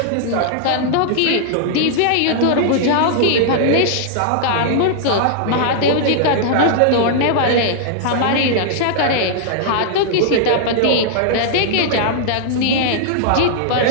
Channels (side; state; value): both; different; correlation -0.01